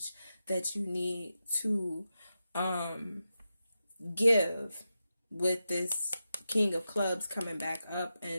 that you need to give with this King of Clubs coming back up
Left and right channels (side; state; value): both; inverted; correlation -0.90